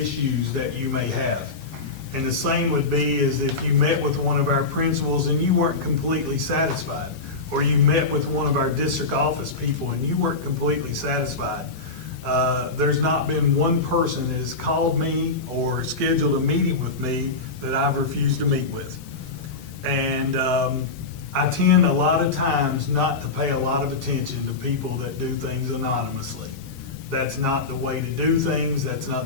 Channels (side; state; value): right; quieter; 3.8 dB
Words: that you may have. And the same would be as if you met with one of our principals and you weren't completely satisfied, or you met with one of our district office people and you weren't completely satisfied. There's not been one person that has called me or scheduled a meeting with me that I've refused to meet with. And I tend a lot of times not to pay a lot of attention to people that do things anonymously. That's not the way to do things. That's not